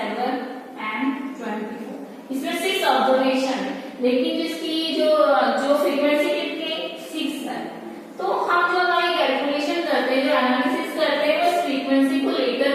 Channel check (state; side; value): identical; both; correlation 1.00